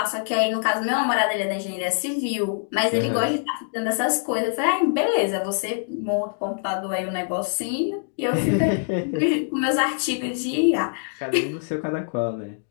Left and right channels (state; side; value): silent; right; digital silence